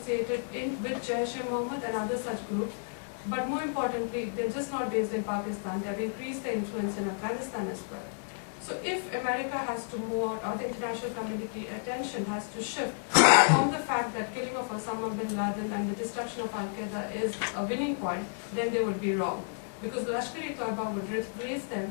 with Jaish-e-Mohammed and other such groups, but more importantly, they're just not based in Pakistan. They've increased their influence in Afghanistan as well. So if America has to move, or the international community attention has to shift from the fact that killing of Osama bin Laden and the destruction of alqaeda is a winning point, then they would be wrong. Because Lashkar-e-Taiba would replace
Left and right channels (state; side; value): silent; right; 57 dB below the other